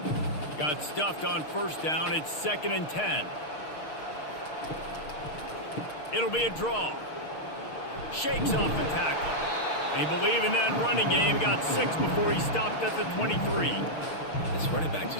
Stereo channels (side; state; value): right; late; 6.5 ms